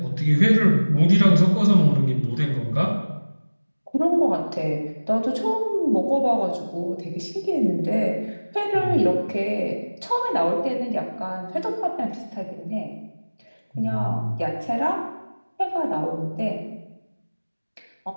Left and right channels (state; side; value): inverted; both; correlation -1.00